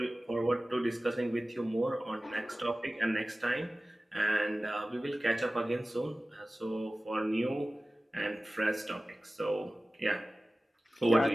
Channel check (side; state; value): both; normal; correlation 0.97